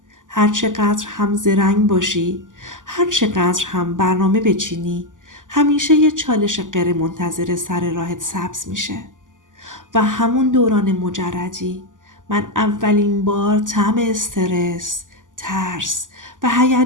هر چقدر هم زرنگ باشی، هر چقدر هم برنامه بچینی، همیشه یه چالش غیر منتظره سر راهت سبز میشه. و همون دوران مجردی من اولین بار طعم استرس، ترس و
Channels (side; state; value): left; late; 0.88 ms